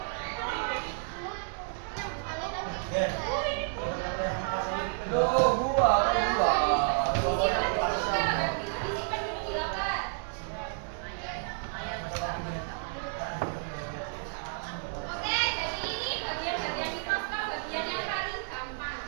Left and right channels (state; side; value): silent; left; 57 dB below the other